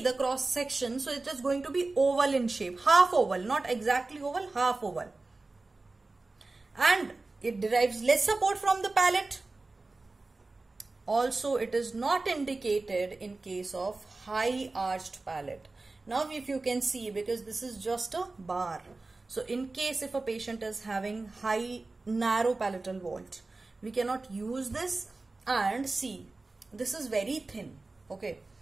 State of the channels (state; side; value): quieter; left; 3.4 dB